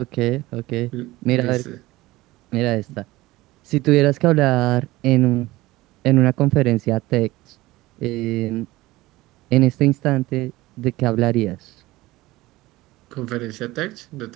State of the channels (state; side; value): quieter; left; 18.9 dB